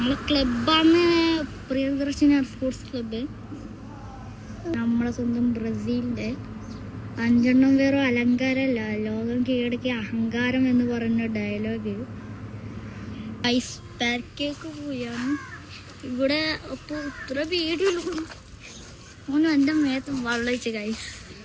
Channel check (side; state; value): both; identical; correlation 1.00